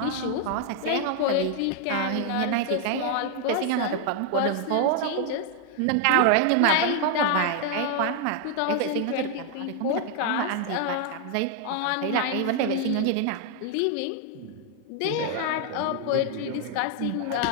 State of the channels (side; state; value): both; different; correlation 0.00